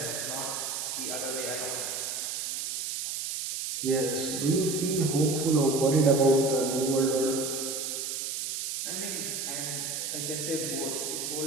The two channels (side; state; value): right; noise; hiss, 3 dB below the sound